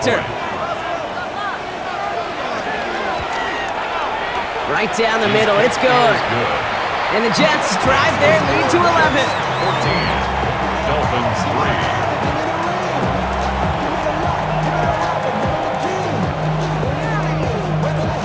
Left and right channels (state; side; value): identical; both; correlation 1.00